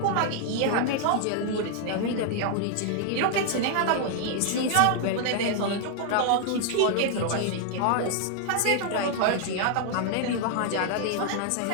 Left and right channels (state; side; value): different; both; correlation 0.00